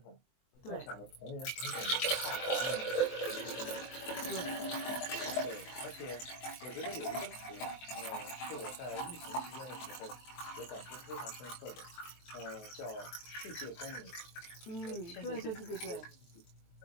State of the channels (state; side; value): late; right; 23 ms